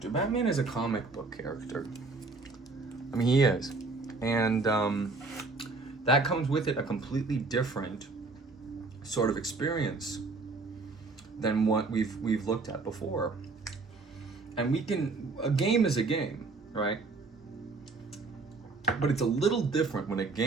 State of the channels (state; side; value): quieter; left; 3.8 dB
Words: Batman is a comic book character. I mean, he is. And that comes with it a completely different sort of experience than what we've looked at before. And a game is a game, right? But it's a little different when a